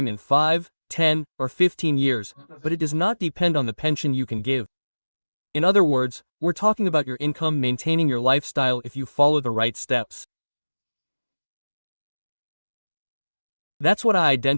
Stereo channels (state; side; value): inverted; both; correlation -1.00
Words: in 5, 10, or 15 years, but it does not depend on the pension you can give. In other words, we're talking about your income maintaining your lifestyle if you follow the right steps. That's what I